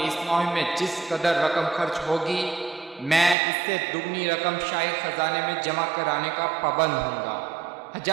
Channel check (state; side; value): drops out; left; at 3.4 s